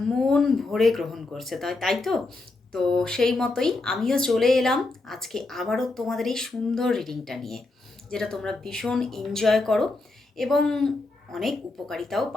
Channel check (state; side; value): quieter; right; 3.2 dB